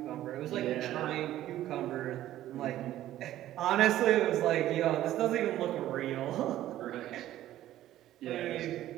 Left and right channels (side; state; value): left; quieter; 13.5 dB